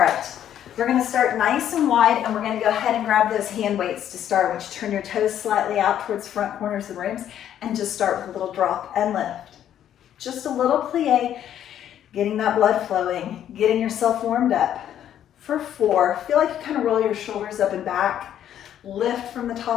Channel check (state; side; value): quieter; right; 10.5 dB